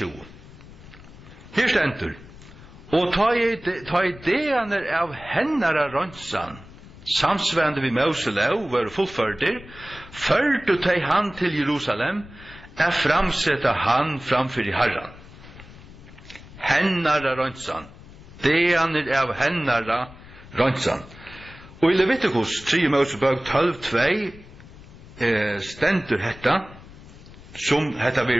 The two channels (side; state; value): left; noise; rumble, 19 dB below the sound